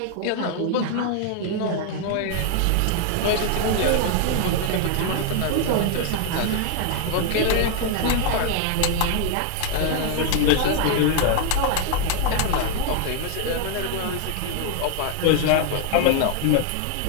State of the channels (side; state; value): both; different; correlation 0.00